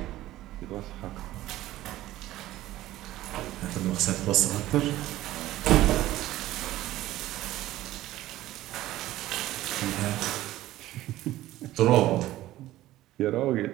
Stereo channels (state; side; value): quieter; left; 15.4 dB